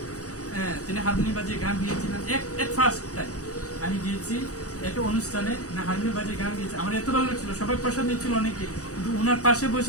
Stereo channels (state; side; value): late; right; 0.66 ms